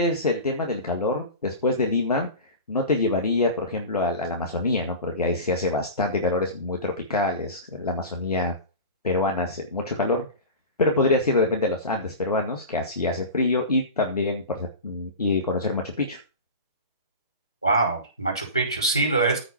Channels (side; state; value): both; inverted; correlation -0.30